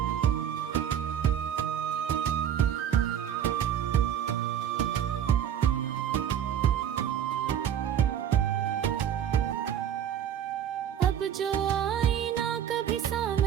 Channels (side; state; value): left; quieter; 9.6 dB